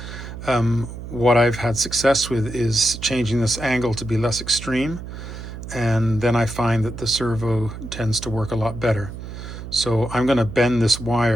What I've had success with is changing this angle to be less extreme, and then I find that the servo tends to work a lot better. So I'm going to bend this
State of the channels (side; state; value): right; noise; hum, 10 dB below the sound